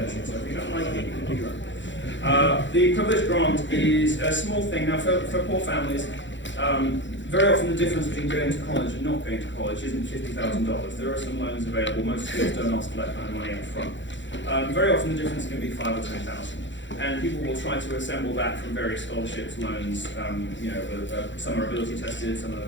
So if you don't like it, you can do your own. The privilege grant is a small thing. Now, for poor families, very often the difference between going to college and not going to college isn't $50,000. There are some loans available. Most schools don't ask for that kind of money up front. Very often the difference can be $5,000 or $10,000. And people will try to assemble that from various scholarships, loans. Some are ability tested, some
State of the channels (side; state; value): right; late; 0.54 ms